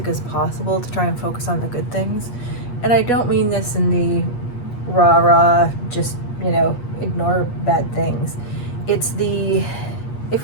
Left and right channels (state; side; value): late; right; 8.4 ms